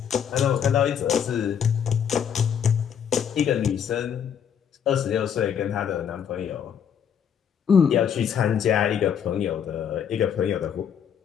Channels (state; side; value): quieter; right; 8.2 dB